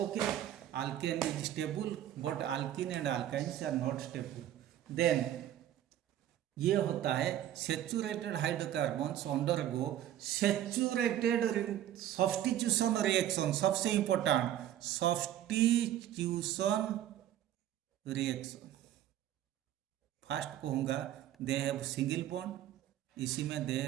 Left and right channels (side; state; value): left; quieter; 11.9 dB